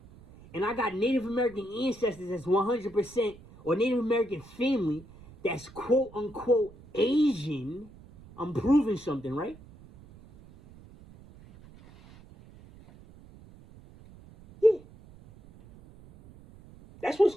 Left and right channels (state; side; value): noise; right; rumble, 22 dB below the sound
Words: and I got Native American ancestors that's 100%, or Native American family that's quote unquote Asian, I'm proving something, right? Yeah. That's what it's